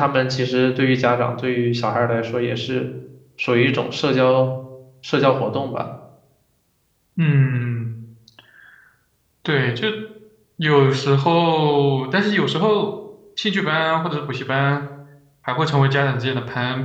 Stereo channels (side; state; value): both; identical; correlation 1.00